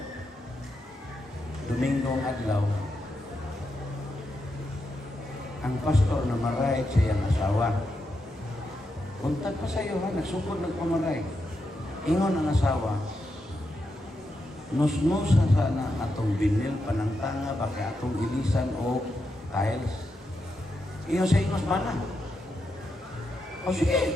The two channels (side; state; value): both; normal; correlation 0.85